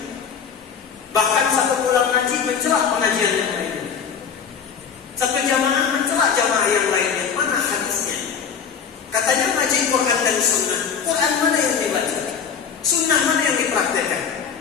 Bahkan satu pulang ngaji mencelah pengajian yang lainnya. Satu jamaah mencelah jamaah yang lainnya. Mana hadisnya? Katanya ngaji Quran dan Sunnah. Quran mana yang dibaca? Sunnah mana yang dipraktekkan?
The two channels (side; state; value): right; quieter; 6.9 dB